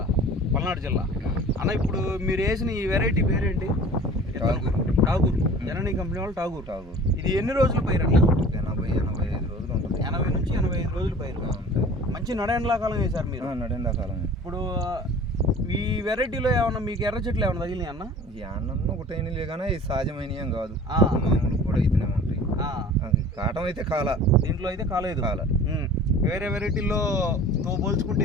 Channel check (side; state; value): both; normal; correlation 0.44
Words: పల్నాడు జిల్లా. అన్న, ఇప్పుడు మీరు వేసిన ఈ వెరైటీ పేరేంటి? ఠాగూర్. జననీ కంపెనీ వాళ్ళు ఠాగూర్. ఇది ఎన్ని రోజుల పైరు అన్న? 80-85 రోజులు ఉంటుంది. 80 నుంచి 85 రోజుల పైరు. మంచి నడెండ్లాకాలం వేశారు మీరు. నడెండాకాలం. ఇప్పుడు ఈ వెరైటీలో ఏమన్నా మీకు ఎర్ర చెట్లు ఏమన్నా తగిలినాయి అన్న? ఈ అన్నం ఒకటైనలే కానీ ఇది సహజమైన ఏం కాదు, మామూలు కూడా అయితేనే ఉంటాయి. కాటం అయితే కాల, దీంట్లో అయితే కాలేదు. వేరే వెరైటీల్లో తో పోల్చుకుంటే